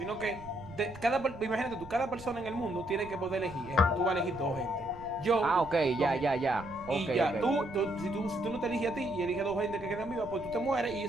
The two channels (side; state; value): right; noise; rumble, 17 dB below the sound